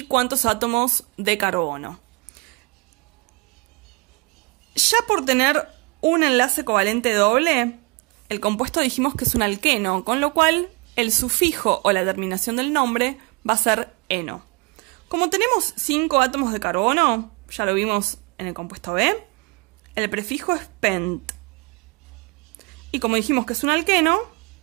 cuántos átomos de carbono. Ya por tener un enlace covalente doble, el compuesto dijimos que es un alqueno, con lo cual el sufijo o la terminación del nombre va a ser eno. Como tenemos 5 átomos de carbono, ya lo vimos en el compuesto B, el prefijo es pent. Y como dijimos que es un alqueno,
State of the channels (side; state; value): left; quieter; 28.6 dB